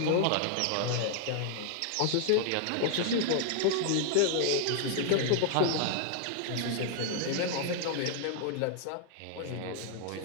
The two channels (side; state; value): both; different; correlation -0.01